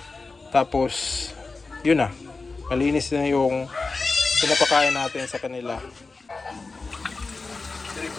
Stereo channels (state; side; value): quieter; right; 3.9 dB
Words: tapos yun na, malinis na yung pinapakain natin sa kanila.